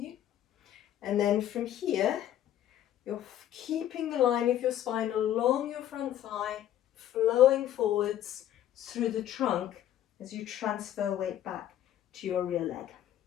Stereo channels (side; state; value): right; quieter; 11.7 dB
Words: And then from here, you're keeping the line of your spine along your front thigh, flowing forwards through the trunk as you transfer weight back to your rear leg.